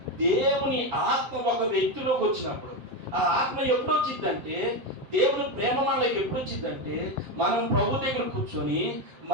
దేవుని ఆత్మ ఒక వ్యక్తిలోకి వచ్చినప్పుడు, ఆ ఆత్మ ఎప్పుడు వచ్చిందంటే దేవుని ప్రేమ మనలోకి ఎప్పుడు వచ్చిందంటే మనం ప్రభు దగ్గర కూర్చొని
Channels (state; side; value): late; left; 7.7 ms